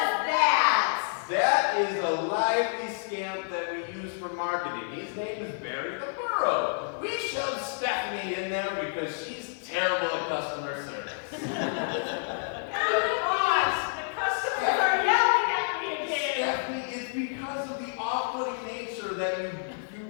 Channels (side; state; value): right; silent; digital silence